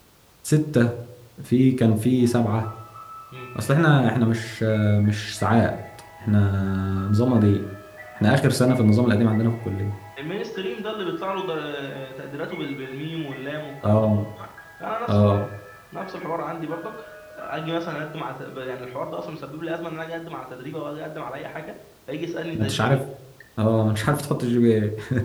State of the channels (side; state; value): both; identical; correlation 1.00